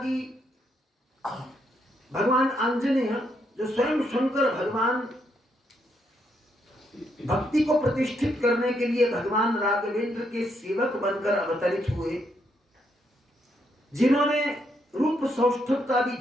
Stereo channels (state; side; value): normal; both; correlation 0.76